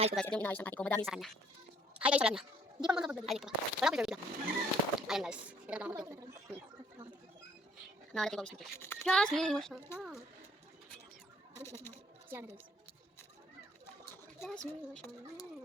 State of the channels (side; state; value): both; normal; correlation 0.61